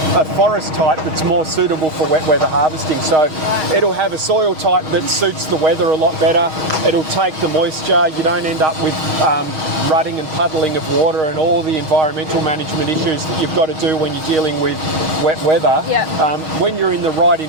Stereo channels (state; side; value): late; left; 6.4 ms